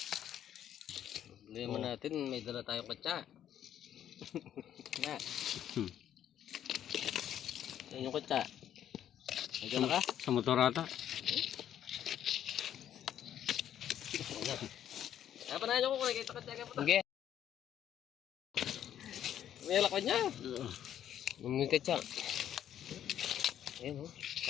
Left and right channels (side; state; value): right; quieter; 10.5 dB